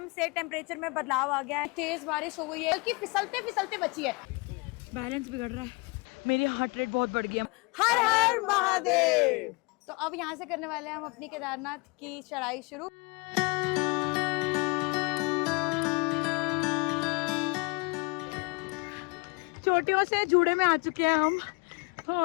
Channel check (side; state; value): right; quieter; 28.3 dB